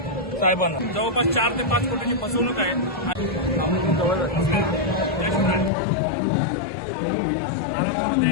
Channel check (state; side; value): drops out; right; at 5.7 s